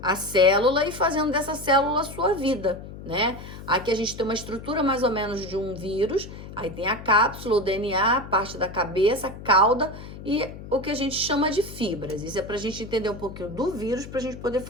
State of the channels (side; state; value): left; noise; hum, 13 dB below the sound